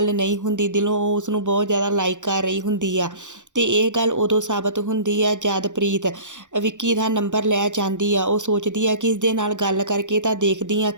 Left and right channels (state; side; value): late; left; 0.86 ms